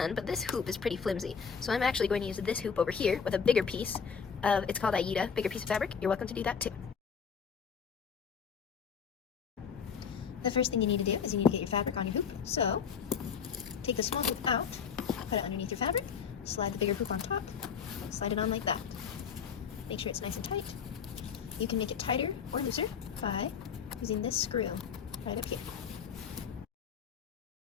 but this hoop is pretty flimsy. So I'm actually going to use this hoop over here with a bigger piece of, it's called Aida, bigger piece of fabric. You're welcome to do that too. The first thing you need to do is you need to get your fabric on your hoop. So take the small hoop out, put it underneath your fabric, slide the bigger hoop on top, slide it on like that. Make sure it's nice and tight. You can make it tighter or looser by using this screw right up here.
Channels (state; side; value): quieter; right; 6.7 dB